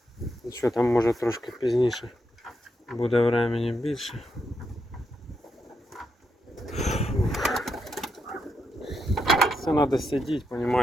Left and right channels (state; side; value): normal; both; correlation 0.82